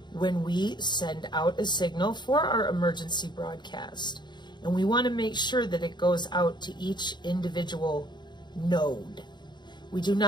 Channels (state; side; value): late; right; 0.21 ms